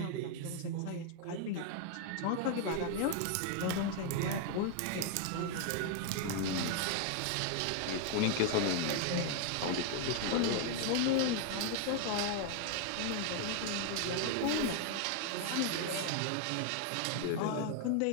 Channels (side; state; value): both; different; correlation 0.00